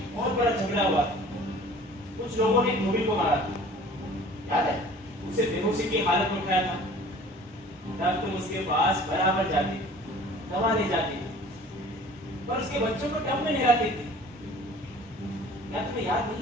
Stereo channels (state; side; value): normal; both; correlation 0.47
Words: बहुत बड़ा झगड़ा हुआ था। कुछ लोगों ने धोबी को मारा था, याद है? उसे बेहोशी की हालत में उठाया था। तब तुम उसके पास बराबर जाती, दवा ले जाती, पर उसके बच्चों को टब में नहलाती थी। क्या तुम्हें याद नहीं